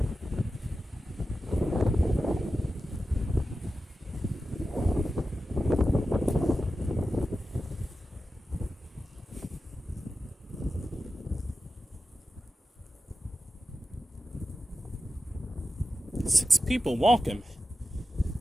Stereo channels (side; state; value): both; normal; correlation 0.91